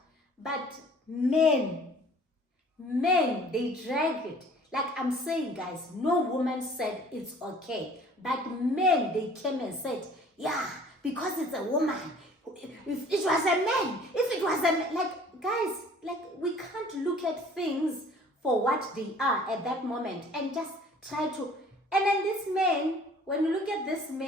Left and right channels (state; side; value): normal; both; correlation 0.52